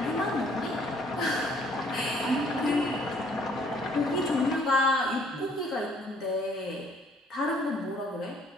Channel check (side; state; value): both; normal; correlation 0.61